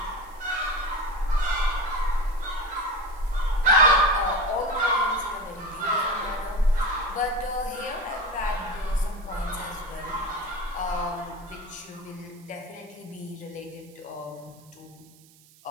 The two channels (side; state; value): right; noise; hiss, 26 dB below the sound